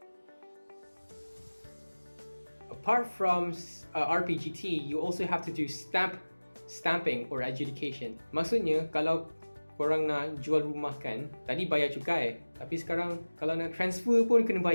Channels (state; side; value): inverted; both; correlation -1.00